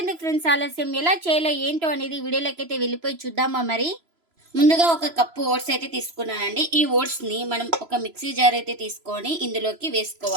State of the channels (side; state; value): left; late; 3.0 ms